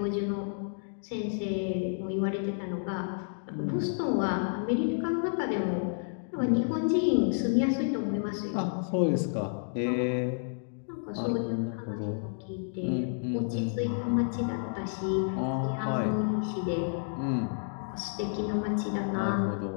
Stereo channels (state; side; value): silent; right; digital silence